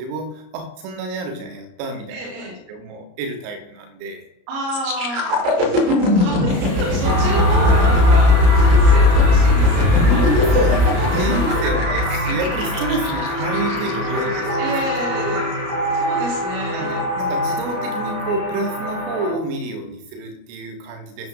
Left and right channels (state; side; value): late; left; 33 ms